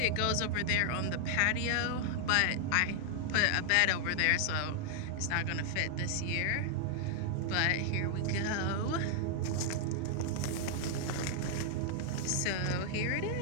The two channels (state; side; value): different; both; correlation -0.01